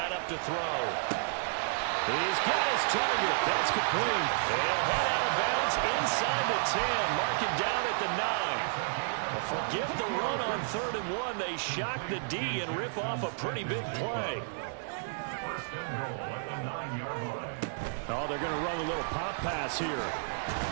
up to throw. He's got his target. That's complete. He'll head out of bounds inside the 10. Mark him down at the 9. Well, forget the run on 3rd and 1. They shock the D and rip off a pretty big play. Oh, they're going to run a little pop pass here.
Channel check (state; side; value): silent; left; digital silence